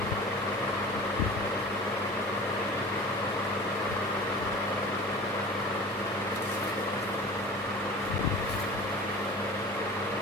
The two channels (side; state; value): right; noise; hum, 28 dB below the sound